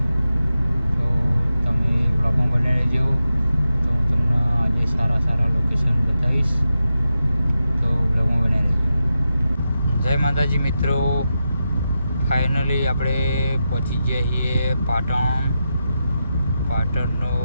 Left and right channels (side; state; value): both; inverted; correlation -0.89